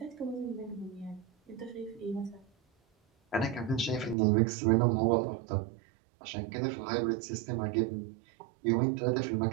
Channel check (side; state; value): left; drops out; at 4.2 s